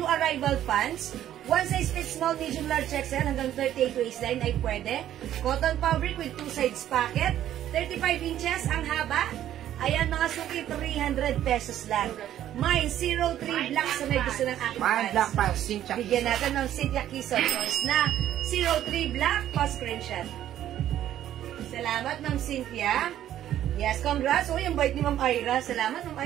arrival pants. One size fits small, medium, large, XL hanggang 38 waistline ay pwede. Cotton fabric with two sides pocket. 35 inches ang haba. Ayan, mga suki, 300 pesos lang. Mine, 03 black sa may gusto ng aking pants. Black pants, Cynthia Quezon. Bigyan natin ng Cynthia Quezon na 03 black pa-screenshot. Salamat, Ma'am Cynthia. Yes, congrats. Uy, ang bait ni Ma'am Ira. Salamat, Ma'am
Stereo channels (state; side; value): quieter; left; 11.8 dB